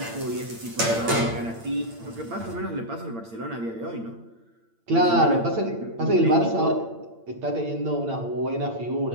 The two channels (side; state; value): left; late; 8.8 ms